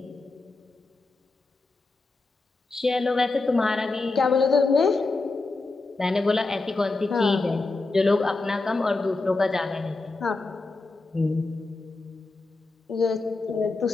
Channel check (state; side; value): quieter; right; 3.5 dB